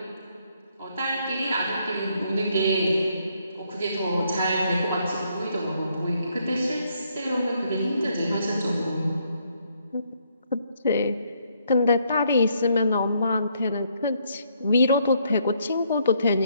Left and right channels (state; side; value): inverted; both; correlation -0.72